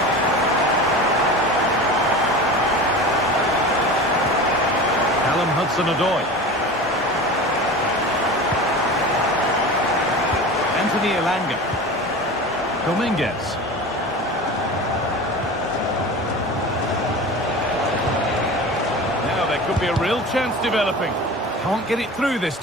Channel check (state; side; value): normal; both; correlation 0.33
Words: Hudson-Odoi. Anthony Elanga. Dominguez. Now there could be a real chance developing. Can't get it through this